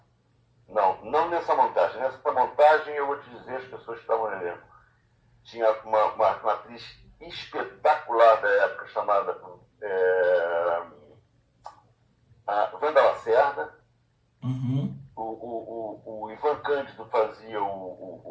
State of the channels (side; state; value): both; identical; correlation 1.00